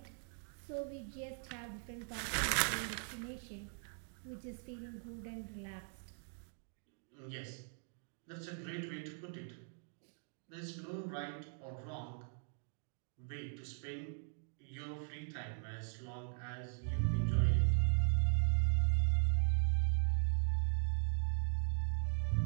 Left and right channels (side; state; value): left; silent; 51 dB below the other